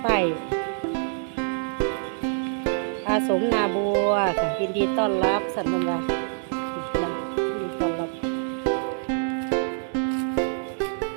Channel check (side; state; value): left; silent; digital silence